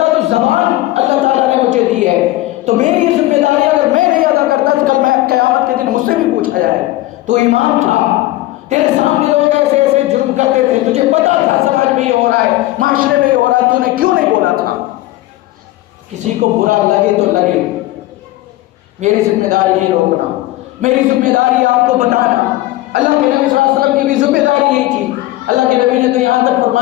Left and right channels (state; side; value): quieter; right; 17.1 dB